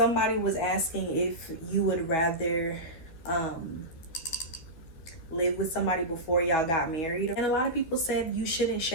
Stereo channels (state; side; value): late; right; 12 ms